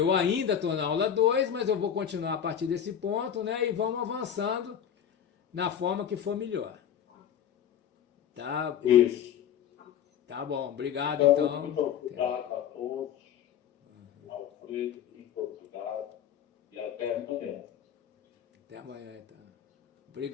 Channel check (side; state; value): right; quieter; 9.0 dB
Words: ainda estou na aula 2, mas eu vou continuar a partir desse ponto, né? E vamos avançando na forma que for melhor. Tá? Isso. Tá bom, obrigado Então, muito então. obrigado a todos. Alfredo, muito obrigado. E até amanhã. Até amanhã, então.